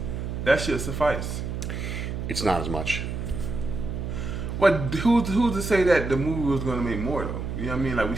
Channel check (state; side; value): noise; right; hum, 4 dB below the sound